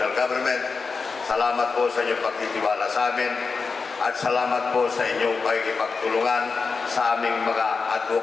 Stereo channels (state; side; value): quieter; right; 4.7 dB